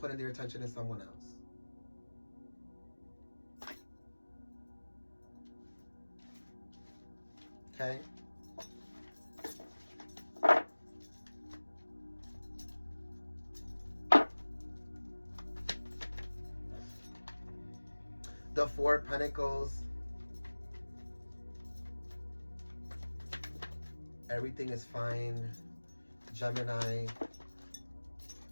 their attention in someone else. Okay? The Four of Pentacles. Everything is fine. Gemini,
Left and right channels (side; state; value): both; inverted; correlation -1.00